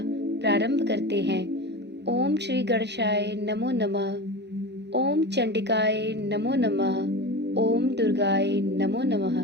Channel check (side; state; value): left; late; 0.50 ms